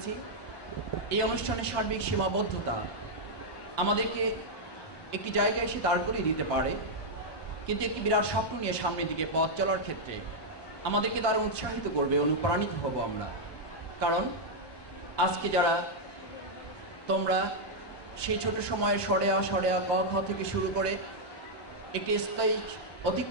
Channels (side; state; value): right; late; 1.2 ms